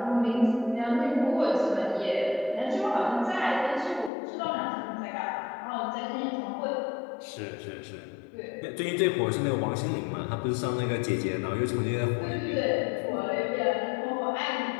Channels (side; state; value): right; drops out; at 4.1 s